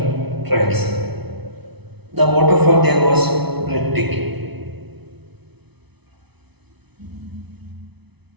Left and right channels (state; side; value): late; left; 0.99 ms